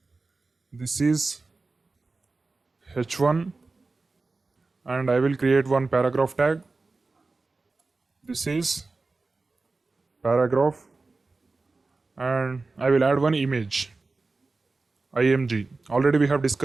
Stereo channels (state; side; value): quieter; left; 3.7 dB